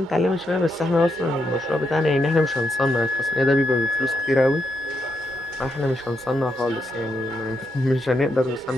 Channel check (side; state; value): both; normal; correlation 0.81